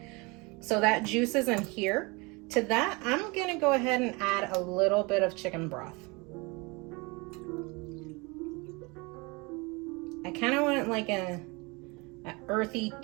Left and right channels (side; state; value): left; quieter; 26.9 dB